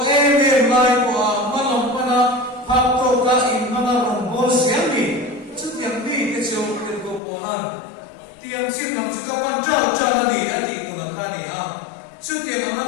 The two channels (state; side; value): drops out; right; at 7.2 s